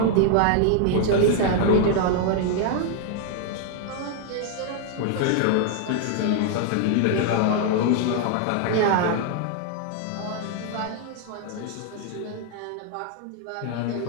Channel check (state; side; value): different; both; correlation 0.00